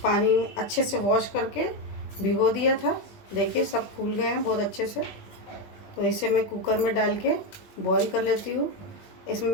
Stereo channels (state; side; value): late; right; 20 ms